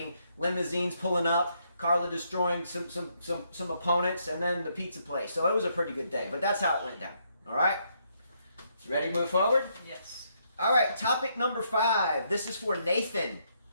limousines pulling up, Carla destroying some opponents, and then the pizza place. So it was a pretty good day, but that's how it went down. All right? Ready to move forward? Yes. All right, topic number 5. This is for Nathan.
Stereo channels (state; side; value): inverted; both; correlation -0.75